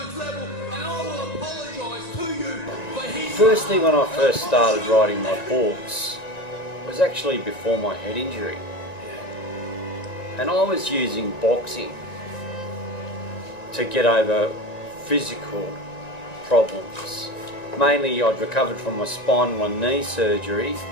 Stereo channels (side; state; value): right; late; 1.9 ms